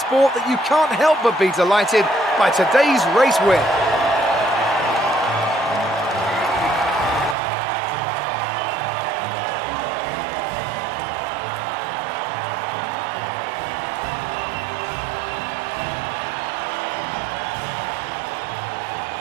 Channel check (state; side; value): drops out; left; at 7.4 s